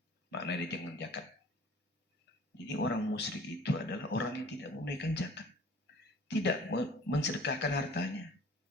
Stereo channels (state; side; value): normal; both; correlation 0.48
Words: maknanya jangan zakat. Jadi orang musyrik itu adalah orang yang tidak menunaikan zakat, tidak mensedekahkan hartanya.